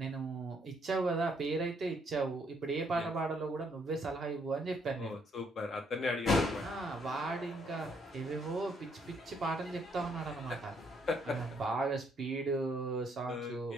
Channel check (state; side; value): normal; both; correlation 0.70